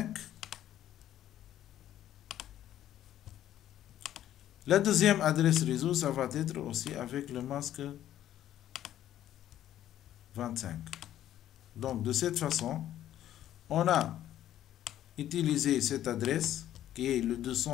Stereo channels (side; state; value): right; quieter; 12.0 dB